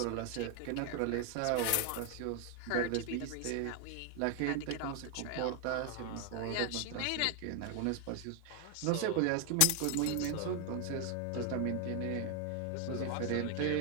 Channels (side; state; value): both; different; correlation 0.01